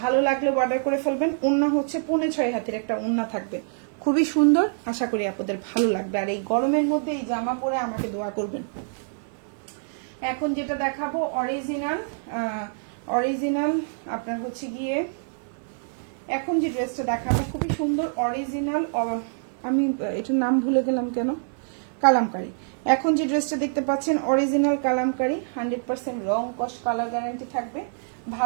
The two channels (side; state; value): left; silent; 57 dB below the other